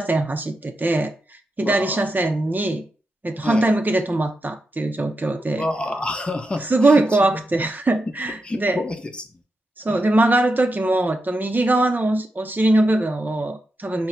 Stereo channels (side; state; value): both; normal; correlation 0.87